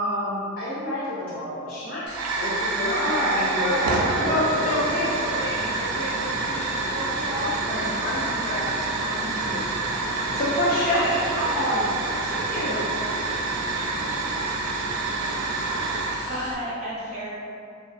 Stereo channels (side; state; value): both; normal; correlation 0.03